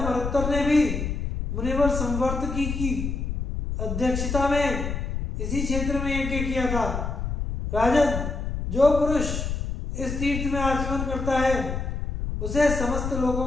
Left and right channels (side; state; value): left; noise; rumble, 3 dB below the sound